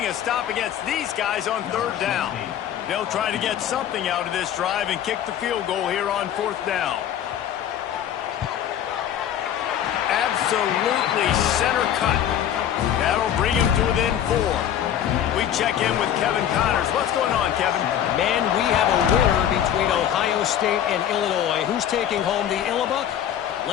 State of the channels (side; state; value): right; quieter; 10.3 dB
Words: a stop against these guys on 3rd down. They'll try to get something out of this drive and kick the field goal here on 4th down. Absolutely center cut. That'll bring him to within 4. We check in with Kevin Connors. What's going on, Kevin? Man, we have a winner between Ohio State and Illinois. Who's taking home the Illibuck?